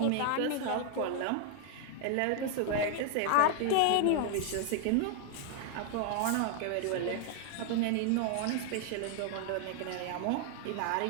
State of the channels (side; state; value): both; different; correlation 0.00